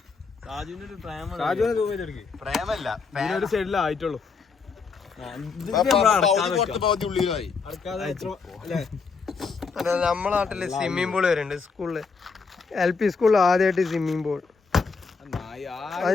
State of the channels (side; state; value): right; quieter; 5.0 dB